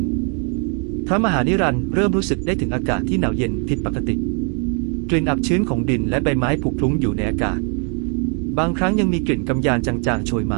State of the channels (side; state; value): left; quieter; 39.6 dB